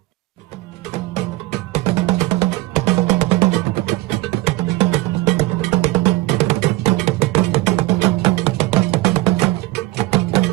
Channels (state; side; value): quieter; left; 18.9 dB